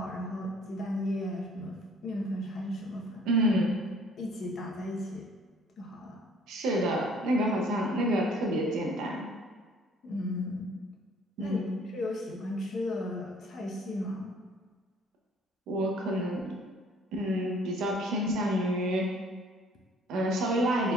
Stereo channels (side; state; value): both; normal; correlation 0.56